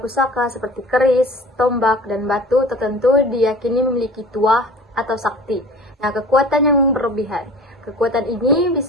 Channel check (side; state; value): both; normal; correlation 0.42